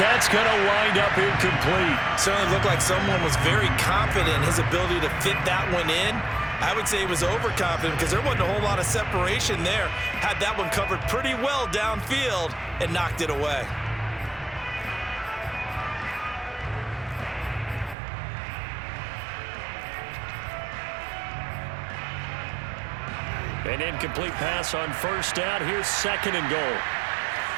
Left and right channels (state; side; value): drops out; left; at 17.9 s